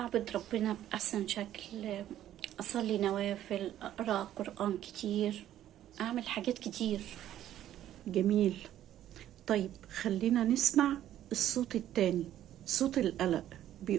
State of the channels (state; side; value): quieter; left; 12.1 dB